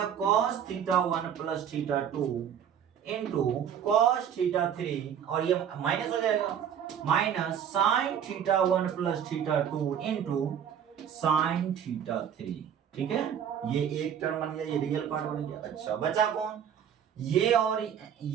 cos theta 1 plus theta 2 into cos theta 3, और ये माइनस हो जाएगा minus sign theta 1 plus theta 2 into sine theta 3, ठीक है। ये एक टर्म बन गया, ये रियल पार्ट बन गया। अच्छा बचा कौन, ये और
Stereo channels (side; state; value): left; quieter; 8.7 dB